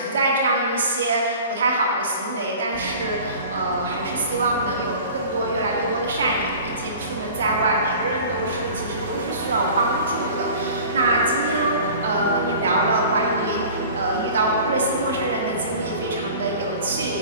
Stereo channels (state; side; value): inverted; both; correlation -0.42